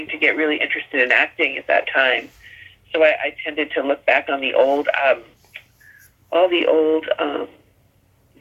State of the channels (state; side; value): identical; both; correlation 1.00